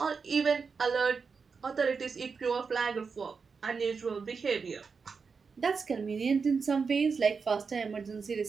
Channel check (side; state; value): left; quieter; 5.2 dB